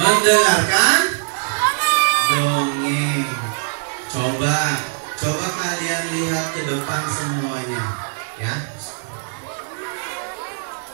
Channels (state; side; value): silent; left; 62 dB below the other